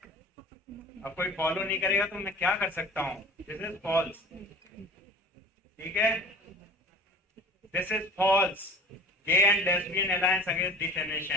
अब कोई फॉलो नहीं करेगा तो मैं क्या कर सकता हूँ? This is false. ठीक है, this is false. Gay and lesbian alliance against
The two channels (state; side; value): normal; both; correlation 0.41